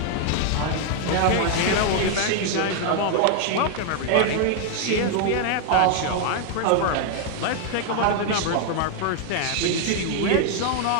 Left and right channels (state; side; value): different; both; correlation 0.00